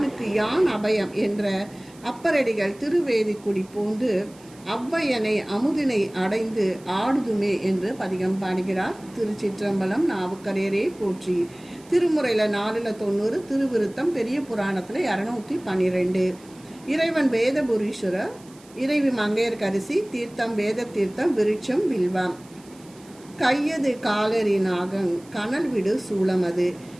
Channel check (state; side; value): noise; right; hiss, 25 dB below the sound